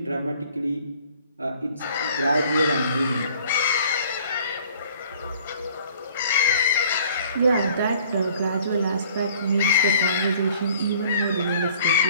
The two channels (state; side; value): inverted; both; correlation -0.54